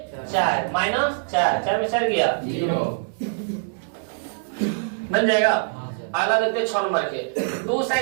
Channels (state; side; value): silent; left; digital silence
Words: 4 माइनस 4 में 4 गया 0 बन जाएगा। अगला देखते हैं 6 नंबर के 2